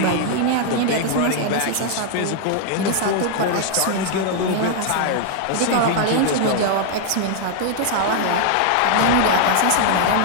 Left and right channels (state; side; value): different; both; correlation 0.00